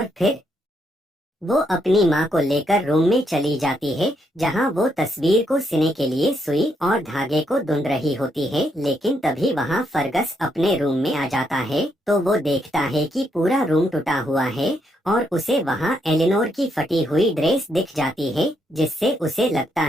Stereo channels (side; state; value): both; normal; correlation 0.77